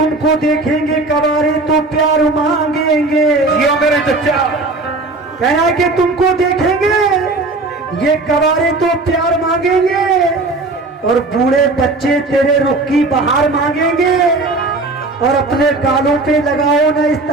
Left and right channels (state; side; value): quieter; left; 3.2 dB